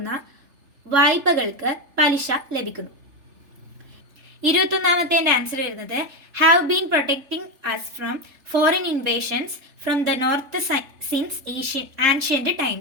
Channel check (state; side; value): late; left; 3.4 ms